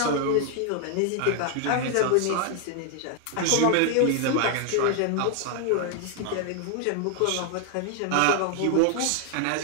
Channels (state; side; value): different; both; correlation 0.00